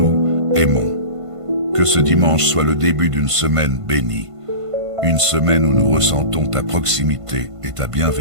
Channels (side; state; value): left; late; 1.5 ms